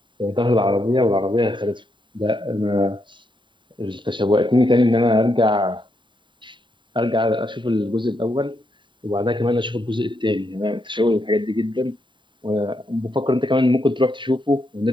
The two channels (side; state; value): left; late; 0.23 ms